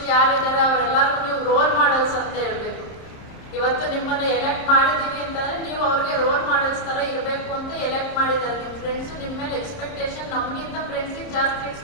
ಯಾರಿದ್ದಾರೆ ಅವರೆಲ್ಲರಿಗೂ ನೀವು ರೋಲ್ ಮಾಡಲ್ಸ್ ಅಂತ ಹೇಳ್ಬೇಕು. ಇವತ್ತು ನಿಮ್ಮನ್ನ ಎಲೆಕ್ಟ್ ಮಾಡಿದೀವಿ ಅಂತಂದ್ರೆ ನೀವು ಅವ್ರಿಗೆ ರೋಲ್ ಮಾಡೆಲ್ಸ್ ತರ ಇರಬೇಕು ಅಂತ ಎಲೆಕ್ಟ್ ಮಾಡಿದ್ದಾರೆ. ನಿಮ್ಮ ಫ್ರೆಂಡ್ಸ್ ನಿಮ್ಮ ಮೇಲೆ ಎಕ್ಸ್ಪೆಕ್ಟೇಷನ್, ನಮಗಿಂತ ಫ್ರೆಂಡ್ಸಿಗೆ ಜಾಸ್ತಿ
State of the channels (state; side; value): late; right; 30 ms